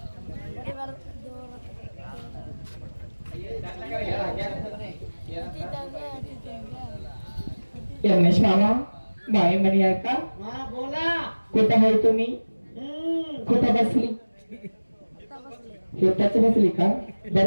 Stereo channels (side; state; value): both; inverted; correlation -1.00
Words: यमनेश मामा माई मनी आहे का बोला कुठं आहे तुम्ही कुठं बसली शेताच बसली का